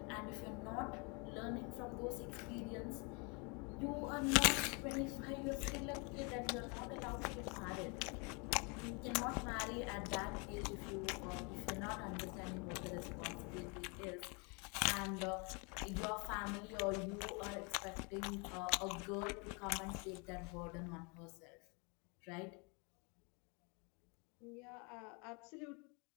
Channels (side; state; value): right; quieter; 32.5 dB